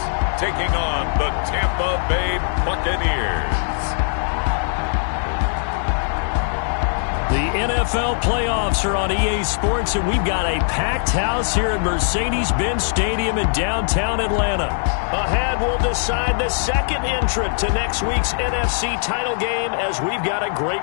taking on the Tampa Bay Buccaneers. The NFL playoffs are on EA Sports, and we've got a packed house here at Mercedes-Benz Stadium in downtown Atlanta. Ahead, we'll decide the second entrant to next week's NFC title game, as we've got a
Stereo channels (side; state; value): right; silent; digital silence